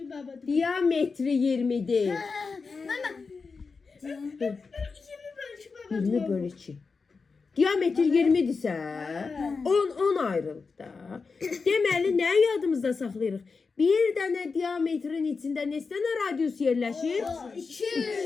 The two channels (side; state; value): right; quieter; 4.7 dB